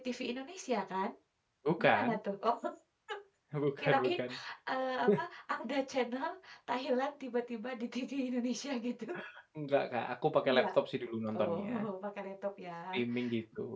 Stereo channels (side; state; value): both; identical; correlation 1.00